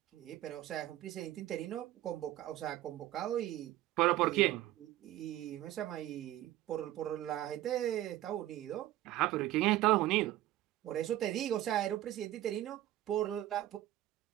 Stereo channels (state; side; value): quieter; left; 14.4 dB